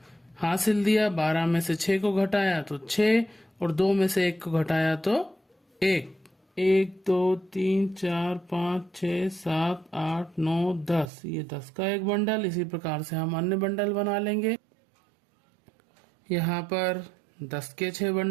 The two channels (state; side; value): drops out; left; at 11.1 s